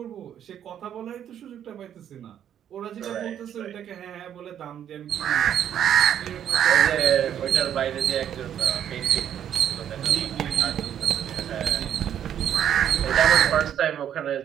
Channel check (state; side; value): quieter; left; 9.8 dB